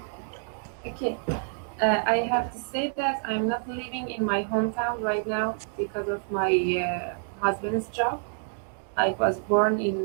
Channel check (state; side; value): silent; left; 60 dB below the other